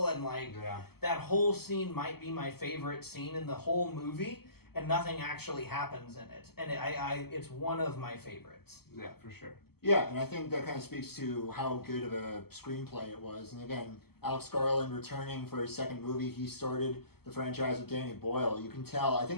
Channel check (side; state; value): right; late; 0.96 ms